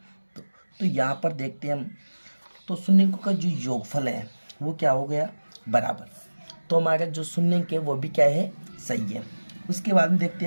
2, तो यहाँ पर देखते हैं हम तो शून्यंकों का जो योगफल है वो क्या हो गया, बराबर। तो हमारा जो शून्यंक है वो भी क्या है, सही है। उसके बाद में देखते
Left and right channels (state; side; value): inverted; both; correlation -1.00